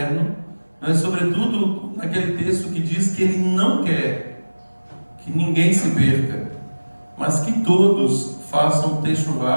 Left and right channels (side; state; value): both; inverted; correlation -1.00